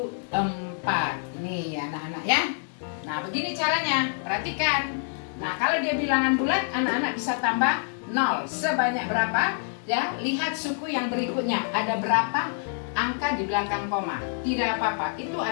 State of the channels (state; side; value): silent; right; 60 dB below the other